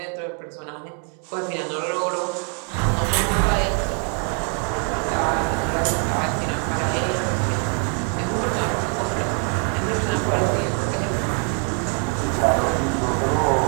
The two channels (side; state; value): left; quieter; 39.0 dB